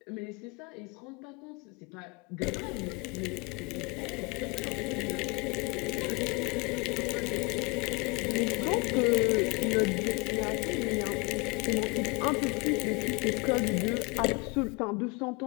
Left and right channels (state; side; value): quieter; right; 28.5 dB